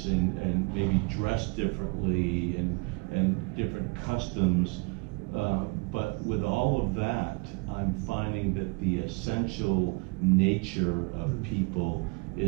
and maybe dress differently and different customs. But with all of that, I'm finding that the essential nature of people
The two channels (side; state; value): left; quieter; 30.8 dB